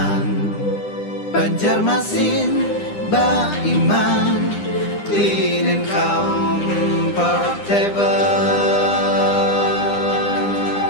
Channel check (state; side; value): late; right; 9.9 ms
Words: Banjarmasin, Baiman, clean and comfortable.